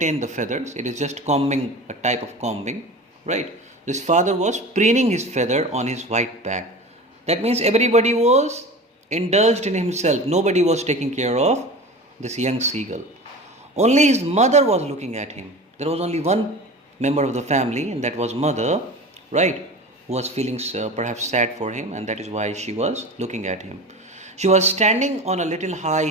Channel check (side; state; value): both; normal; correlation 0.33